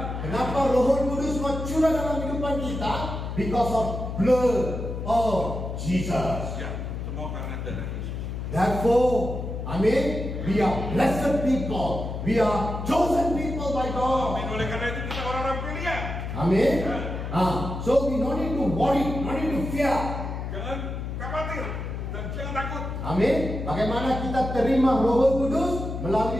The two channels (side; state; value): left; noise; hum, 5 dB below the sound